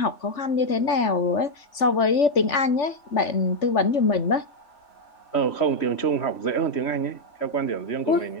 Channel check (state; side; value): late; right; 3.4 ms